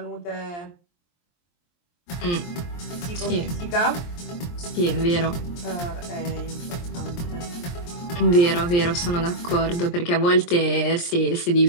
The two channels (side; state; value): right; late; 23 ms